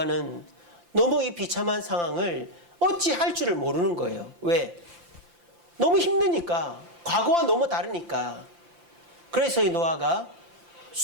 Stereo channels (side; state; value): left; late; 5.8 ms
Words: 너무 이 비참한 상황을 어찌 할 줄을 모르는 거예요. 왜? 너무 힘드니까. 과거와 너무 다르니까. 그래서 이 노아가